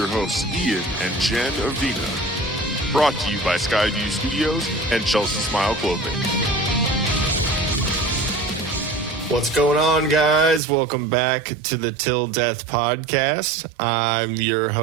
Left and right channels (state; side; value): drops out; left; at 10.6 s